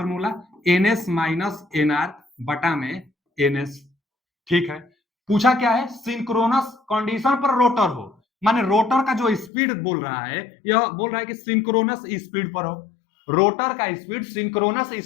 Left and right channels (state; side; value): drops out; right; at 9.5 s